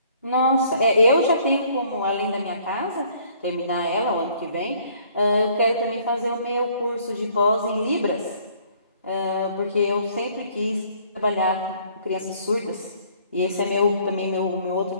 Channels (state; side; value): inverted; both; correlation -0.60